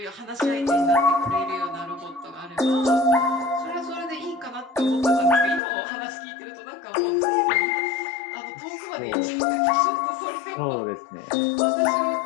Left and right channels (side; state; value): right; drops out; at 5.6 s